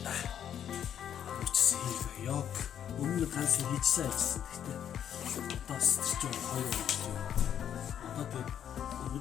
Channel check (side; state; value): right; quieter; 9.5 dB